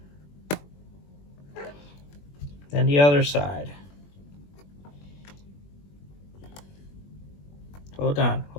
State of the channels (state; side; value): late; right; 21 ms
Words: Then the other side. Hold on,